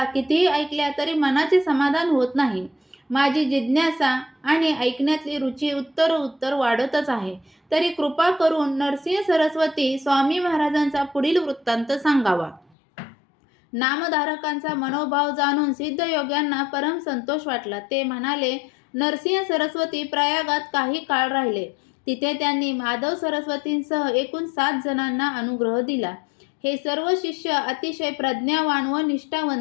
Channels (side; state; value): right; drops out; at 12.7 s